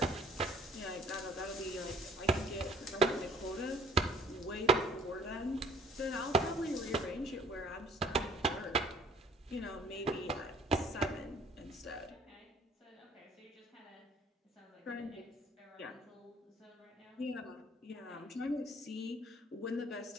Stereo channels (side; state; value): both; normal; correlation 0.57